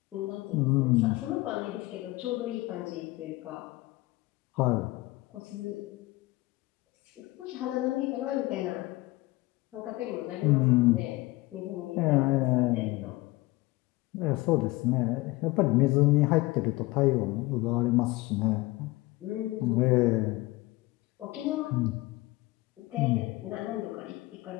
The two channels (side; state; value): right; quieter; 20.6 dB